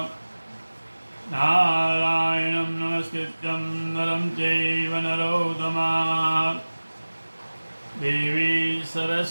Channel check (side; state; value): both; inverted; correlation -1.00